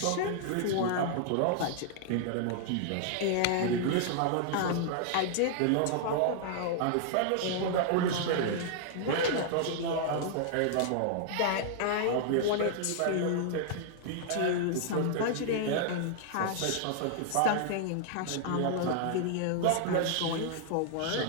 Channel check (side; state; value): both; different; correlation -0.01